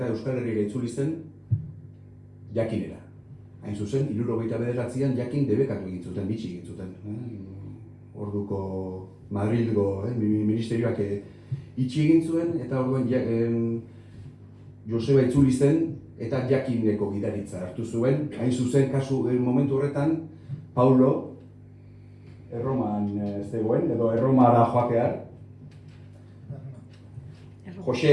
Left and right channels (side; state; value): both; identical; correlation 1.00